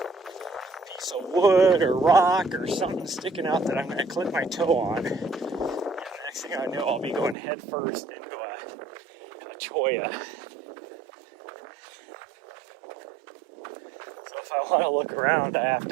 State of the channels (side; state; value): left; drops out; at 7.4 s